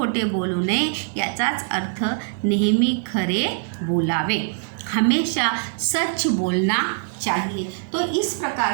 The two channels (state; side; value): silent; left; digital silence